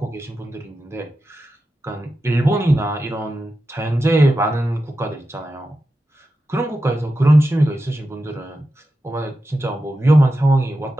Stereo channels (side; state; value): both; normal; correlation 0.91